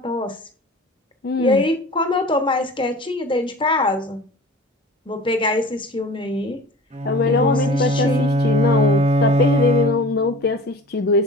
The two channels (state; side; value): normal; both; correlation 0.40